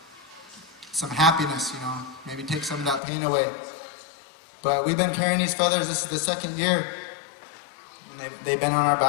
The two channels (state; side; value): drops out; right; at 3.0 s